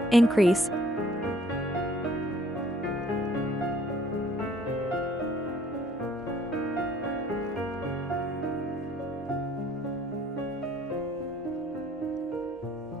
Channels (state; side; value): normal; both; correlation 0.59